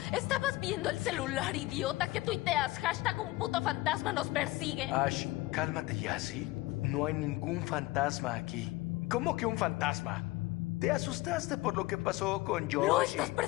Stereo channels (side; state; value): right; quieter; 19.5 dB